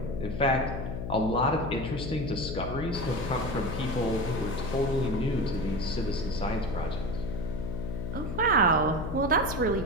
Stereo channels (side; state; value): left; noise; hum, 5 dB below the sound